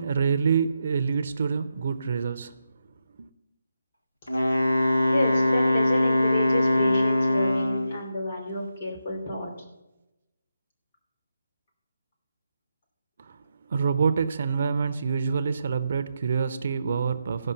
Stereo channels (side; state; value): both; inverted; correlation -0.86